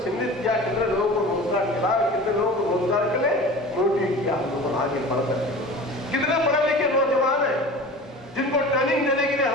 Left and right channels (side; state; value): both; normal; correlation 0.37